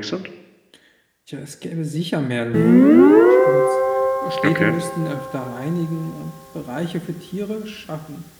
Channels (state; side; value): identical; both; correlation 1.00